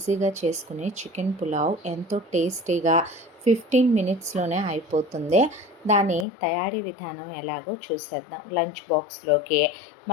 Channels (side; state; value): right; drops out; at 6.2 s